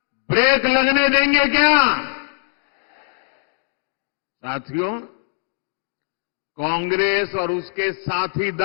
ब्रेक लगने देंगे क्या? साथियों, कांग्रेस और उसके साथी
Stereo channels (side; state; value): right; silent; digital silence